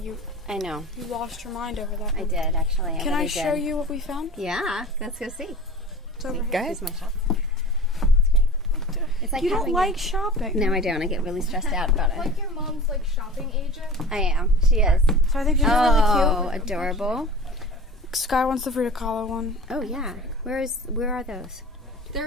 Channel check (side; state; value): both; normal; correlation 0.38